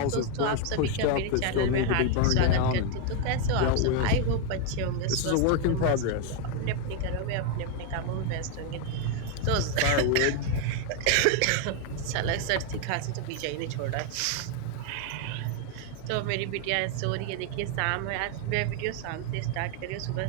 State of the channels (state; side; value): different; both; correlation 0.01